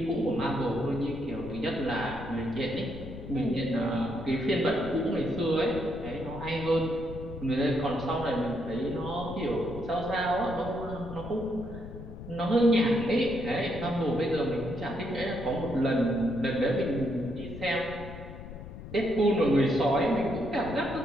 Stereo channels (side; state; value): left; noise; rumble, 12 dB below the sound